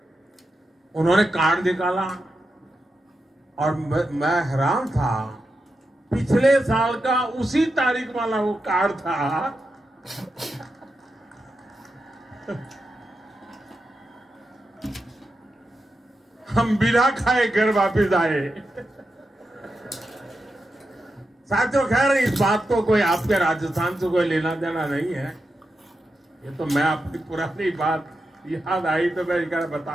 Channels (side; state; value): both; normal; correlation 0.88